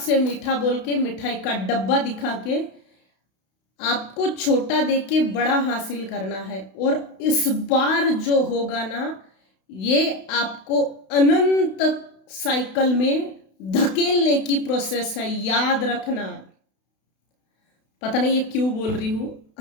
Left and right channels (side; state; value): right; late; 32 ms